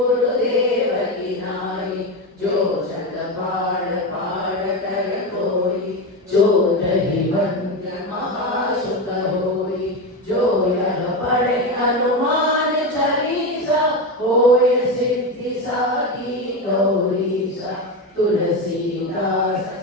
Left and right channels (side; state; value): both; normal; correlation 0.16